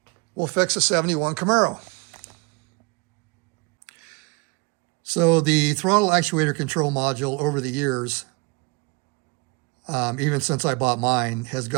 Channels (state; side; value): quieter; left; 29.3 dB